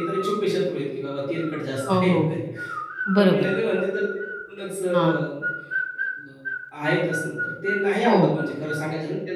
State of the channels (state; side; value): identical; both; correlation 1.00